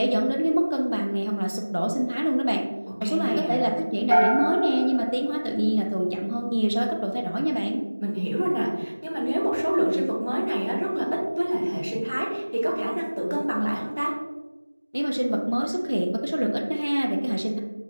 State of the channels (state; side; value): inverted; both; correlation -1.00